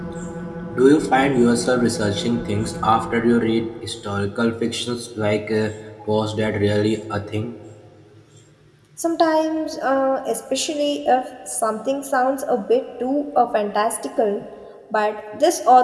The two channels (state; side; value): identical; both; correlation 1.00